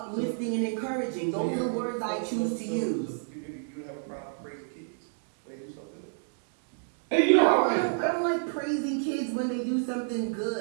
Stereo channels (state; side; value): silent; left; digital silence